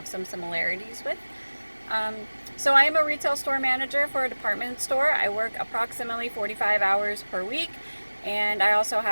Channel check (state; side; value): inverted; both; correlation -1.00